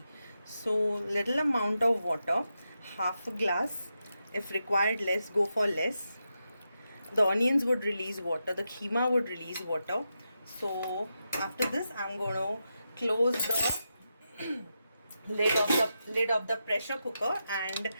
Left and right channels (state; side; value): inverted; both; correlation -0.87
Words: So little amount of water, half a glass. If required less, go for less. The onions would release water, the keema would release water. So after this I'm going to close the lid of the pressure cooker, and